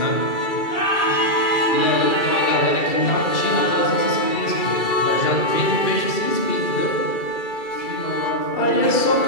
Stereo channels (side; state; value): right; late; 2.3 ms